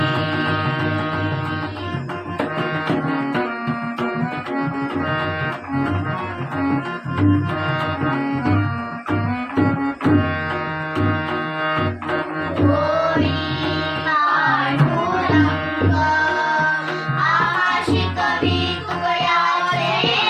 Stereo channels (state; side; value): identical; both; correlation 1.00